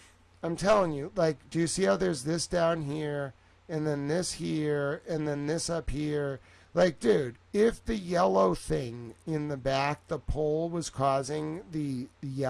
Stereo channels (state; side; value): identical; both; correlation 1.00